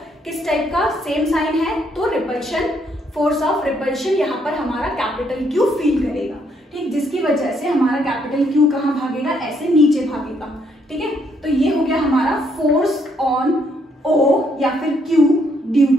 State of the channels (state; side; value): normal; both; correlation 0.72